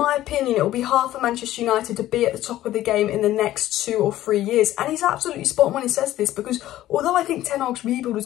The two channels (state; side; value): quieter; right; 14.2 dB